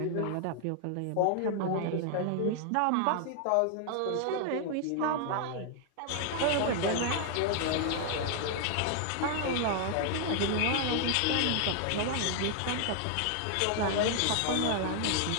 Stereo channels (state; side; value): different; both; correlation 0.00